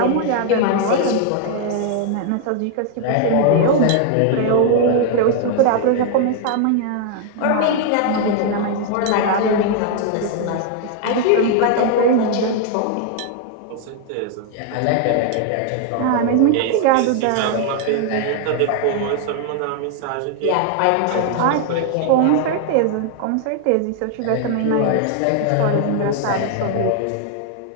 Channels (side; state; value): both; different; correlation 0.00